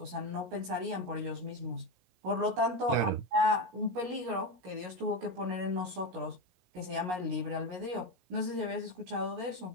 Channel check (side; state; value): left; late; 16 ms